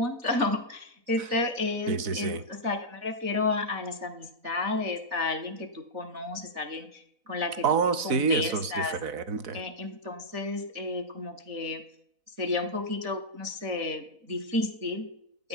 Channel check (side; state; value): left; late; 4.0 ms